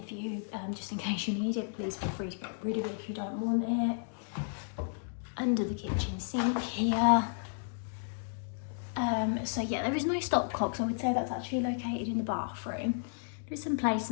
for you just in case you need it. Please feel free to get rid of it if you don't want it. Under the kitchen sink here. So yeah, there is no stopcocks. I would say that's actually located in the bathroom. There's some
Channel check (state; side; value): silent; right; digital silence